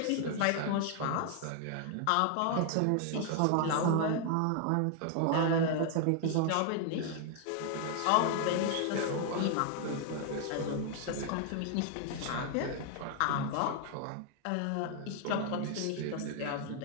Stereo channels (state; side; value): different; both; correlation 0.00